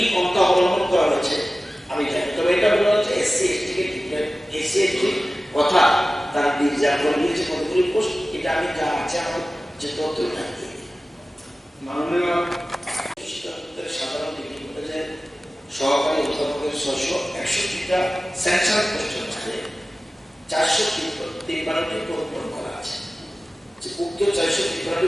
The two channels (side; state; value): both; normal; correlation 0.96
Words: পন্থা অবলম্বন করা হয়েছে আমি জানি তবে এটা বলা হচ্ছে এসসি এসটি কে এসসি এসটি কথা তারা রিজার্ভ করে দিয়েছে কতগুলি পোস্ট এটা আমি যা আছে আমার যে তথ্য থাকি মাননীয় সাধারণ ডিগ্রি কলেজের 661টা স্যাংশন পোস্টের মধ্যে 453টি পূরণ করা আছে। যে উক্ত 453টি